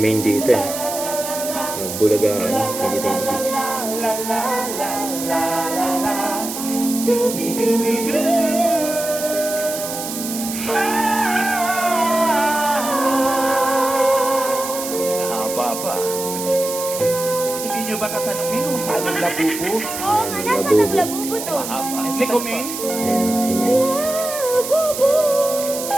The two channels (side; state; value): right; noise; hiss, 7 dB below the sound